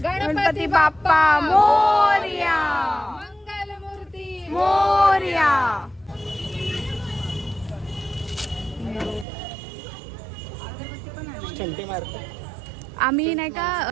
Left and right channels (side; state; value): left; drops out; at 9.2 s